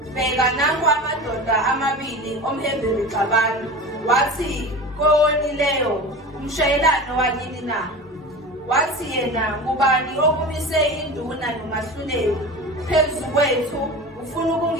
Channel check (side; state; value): both; normal; correlation 0.31